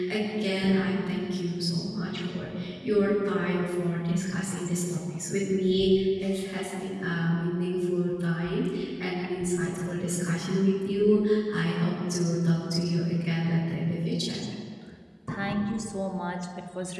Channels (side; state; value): both; identical; correlation 1.00